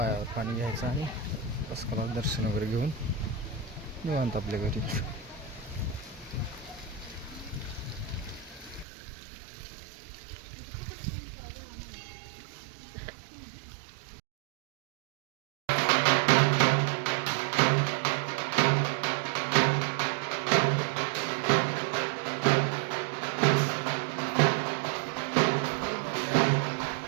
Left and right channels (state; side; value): drops out; left; at 8.8 s